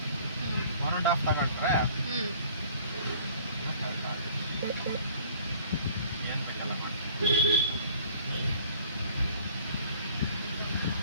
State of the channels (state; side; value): inverted; both; correlation -0.53